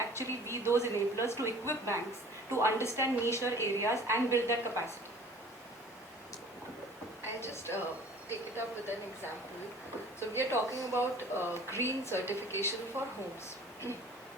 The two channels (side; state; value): both; normal; correlation 0.48